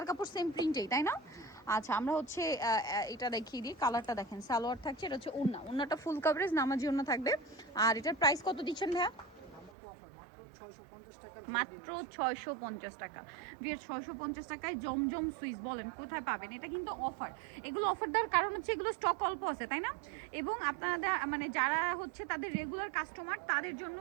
কাপড় সেম প্রিন্টেই, তাই না? আচ্ছা, আমরা হচ্ছে এটা দেখিয়ে দিই। কালারটা দেখেন, সালোয়ার থাকছে, এটা হচ্ছে ওড়নাটা ফুল কভারেজ নামাজি ওড়না থাকবে। আর এটার প্রাইস কত দিচ্ছেন ভাইয়া? মাত্র 650 টাকা। বিয়ের 650 টাকায় জমজম সুইস, বলেন কোথায় পাবেন? এটা কিন্তু অফার। এগুলো অফার দেওয়ার কারণ হচ্ছে এগুলো স্টক অল্প আছে, তাই না? এবং আপনারা মানে যারা হচ্ছে তাদের রেগুলার কাস্টমার, তাদের জন্য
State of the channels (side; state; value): left; drops out; at 9.7 s